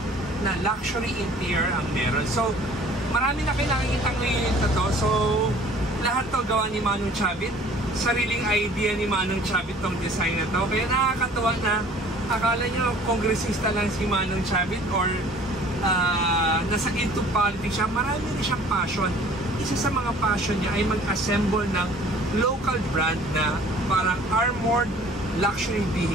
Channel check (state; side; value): normal; both; correlation 0.51